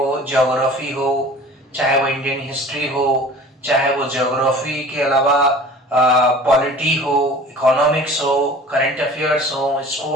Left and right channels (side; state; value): both; normal; correlation 0.43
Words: ज्योग्राफी हो, चाहे वो इंडियन हिस्ट्री हो, चाहे वो ज्योग्राफी के अलावा पॉलिटी हो, इकोनॉमिक्स हो, करंट अफेयर्स हो,